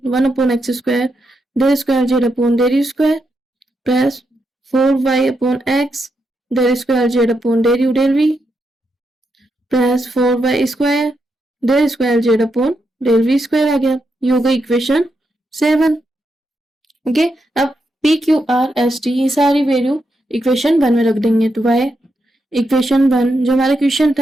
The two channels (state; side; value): normal; both; correlation 0.83